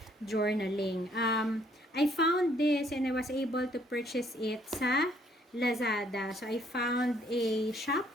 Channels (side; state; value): both; normal; correlation 0.65